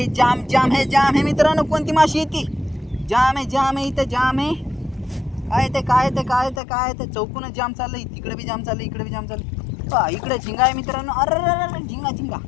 जाम है मित्रांनो. कोणती माशी येते. जाम आहे इथं जाम आहे. काय ते चौकूनच जाम चाललंय. तिकडे बी जाम चाललंय, इकडे बी जाम चाललंय. इकडे झिंगा आहे मित्रांनो. अरे झिंगा इकडे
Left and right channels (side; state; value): right; drops out; at 6.6 s